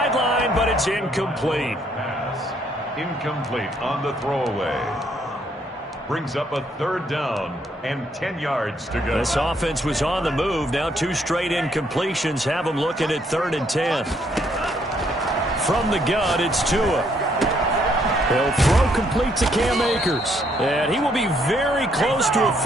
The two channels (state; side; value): normal; both; correlation 0.70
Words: but it's incomplete. Incomplete on the throwaway. Brings up a 3rd down and 10 yards to go. This offense was on the move. Now 2 straight incompletions have them looking at 3rd and 10. From the gun, it's Tua. He'll throw complete to Cam Akers. And he will be very close to a